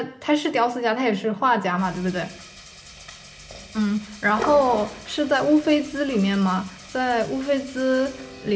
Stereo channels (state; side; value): identical; both; correlation 1.00